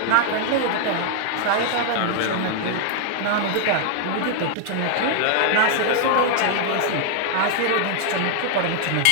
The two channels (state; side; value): different; both; correlation 0.00